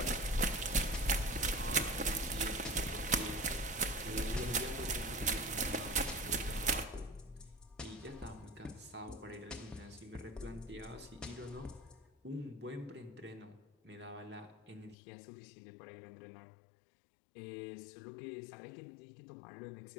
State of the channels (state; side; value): drops out; right; at 15.0 s